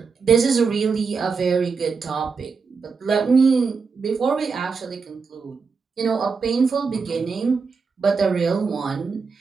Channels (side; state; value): left; quieter; 5.1 dB